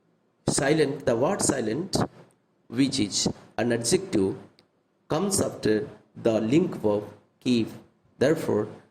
Silent, the word silent, which is an adjective, comes after the link verb keep. Therefore,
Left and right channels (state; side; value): identical; both; correlation 1.00